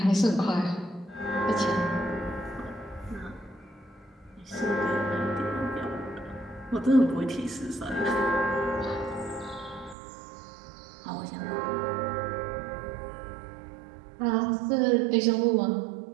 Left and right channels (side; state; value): left; drops out; at 10.0 s